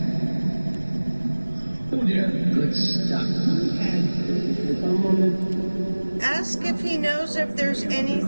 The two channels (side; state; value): both; inverted; correlation -1.00